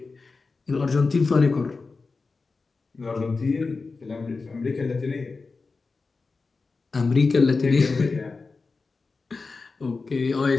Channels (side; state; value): right; quieter; 4.1 dB